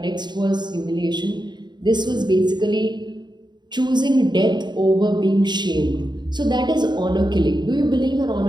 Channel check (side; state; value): left; late; 0.21 ms